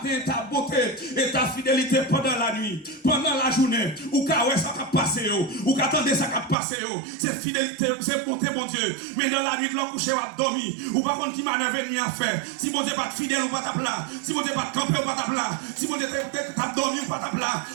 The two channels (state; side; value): drops out; left; at 6.6 s